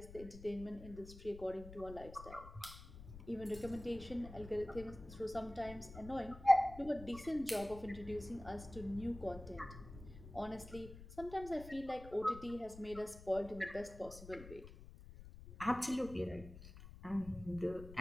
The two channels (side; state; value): left; noise; rumble, 14 dB below the sound